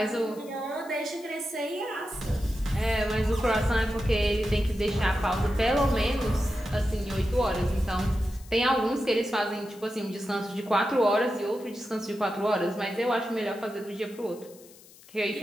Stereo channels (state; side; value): noise; left; hiss, 23 dB below the sound